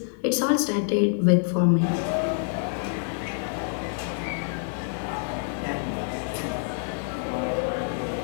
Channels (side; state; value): right; silent; digital silence